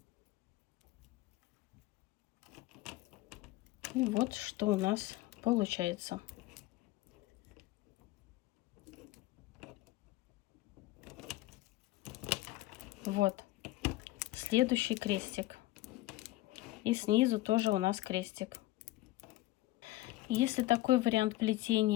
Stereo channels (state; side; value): quieter; right; 17.5 dB